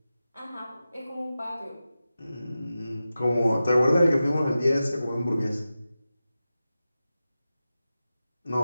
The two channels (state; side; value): inverted; both; correlation -0.93